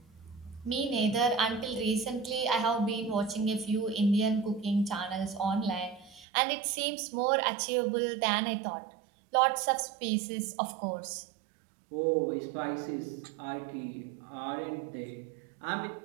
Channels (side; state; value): left; drops out; at 6.2 s